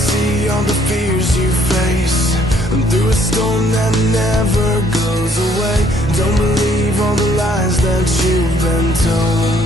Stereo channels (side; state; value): both; normal; correlation 0.64